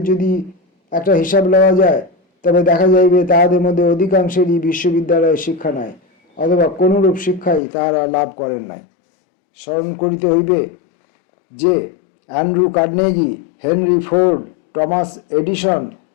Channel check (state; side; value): drops out; right; at 7.6 s